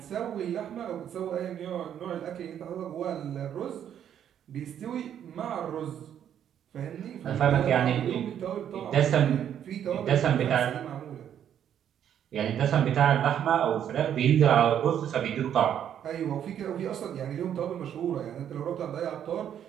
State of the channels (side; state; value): left; quieter; 9.6 dB